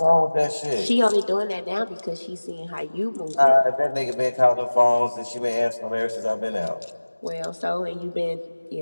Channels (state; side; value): inverted; both; correlation -1.00